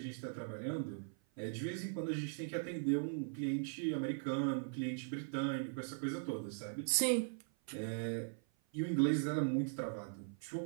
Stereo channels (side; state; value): left; silent; 51 dB below the other